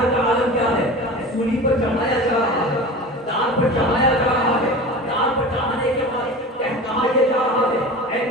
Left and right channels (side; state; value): both; normal; correlation 0.34